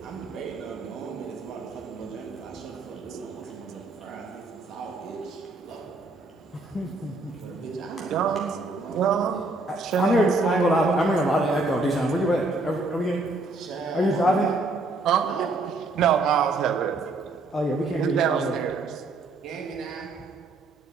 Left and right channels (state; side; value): quieter; left; 3.1 dB